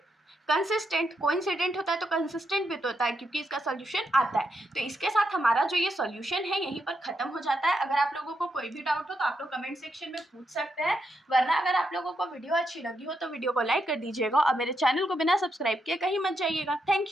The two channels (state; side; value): normal; both; correlation 0.82